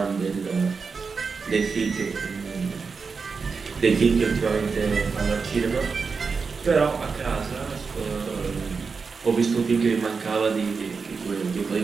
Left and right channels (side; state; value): left; quieter; 5.0 dB